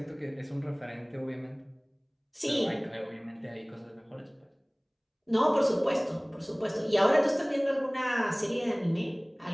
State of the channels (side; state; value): both; identical; correlation 1.00